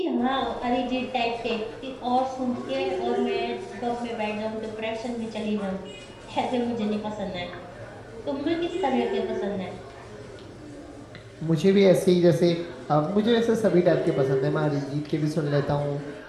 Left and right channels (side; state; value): both; identical; correlation 1.00